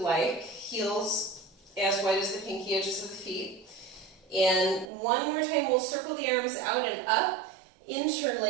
Heels as wide as the pinky edges of the feet. And one more time, we'll circle the arms out and up,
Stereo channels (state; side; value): drops out; left; at 4.9 s